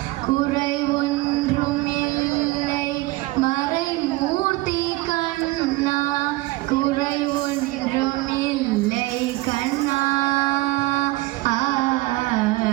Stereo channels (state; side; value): quieter; left; 20.5 dB